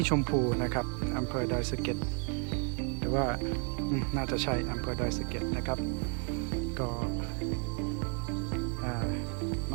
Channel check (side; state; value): left; quieter; 38.5 dB